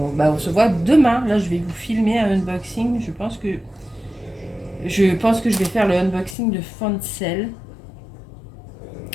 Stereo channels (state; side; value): drops out; right; at 6.4 s